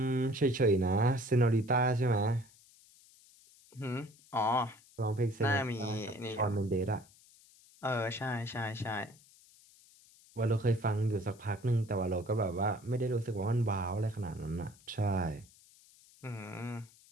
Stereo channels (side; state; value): left; noise; hiss, 26 dB below the sound